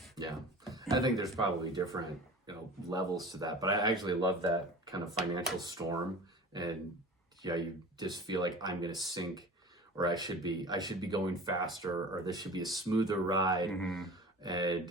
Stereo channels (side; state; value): both; normal; correlation 0.38